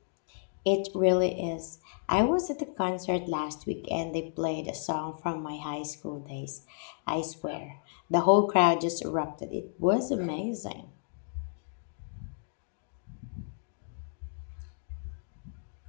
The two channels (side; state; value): right; silent; digital silence